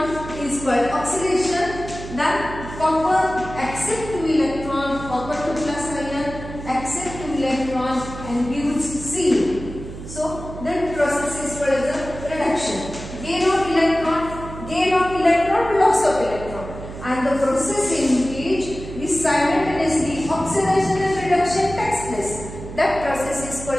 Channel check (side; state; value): right; noise; hum, 11 dB below the sound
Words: is called oxidation. Then copper accept 2 electron, copper 2 plus ion accept 2 electron and gives C. So that process is called as a reduction. Gain of electron, loss of electron. And the process in which this simultaneously oxidation and reduction takes place, that process is